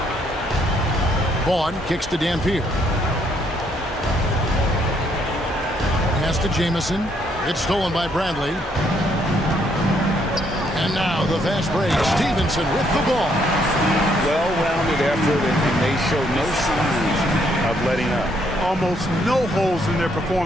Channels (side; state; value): both; normal; correlation 0.71